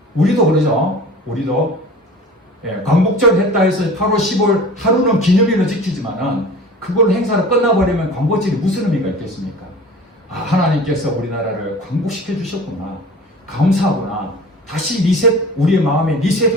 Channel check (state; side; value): normal; both; correlation 0.40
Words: 우리도 그러죠. 우리도 광복절 했다 해서 8월 15일 하루는 기념일로 지키지만은 그걸 행사로 끝나버리면 광복절이 무슨 의미가 있겠습니까? 하나님께서 우리나라를 광복시켜 주셨구나. 감사하구나. 다시 리셋, 우리의 마음에